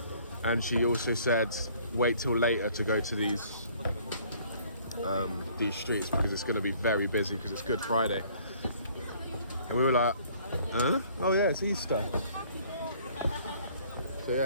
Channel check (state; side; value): inverted; both; correlation -0.58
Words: And she also said wait till later to go to these streets because it's going to be very busy because it's Good Friday. And we were like, huh? Oh yeah, it's Easter. So